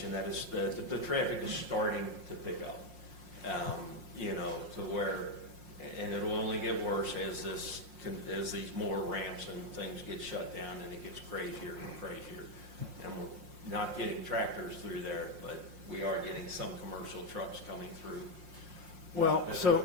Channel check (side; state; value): left; late; 5.6 ms